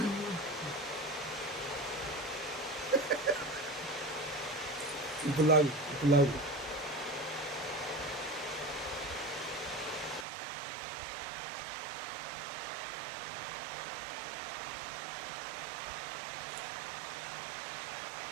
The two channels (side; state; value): left; drops out; at 10.2 s